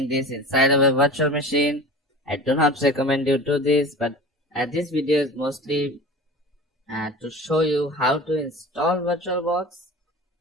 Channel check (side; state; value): both; normal; correlation 0.37